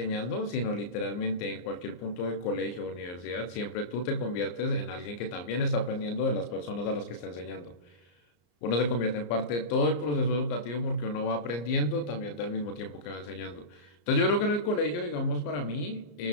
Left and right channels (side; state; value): right; late; 34 ms